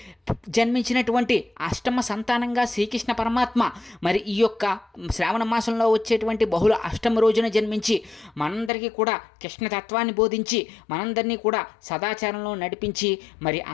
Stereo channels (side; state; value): right; drops out; at 8.7 s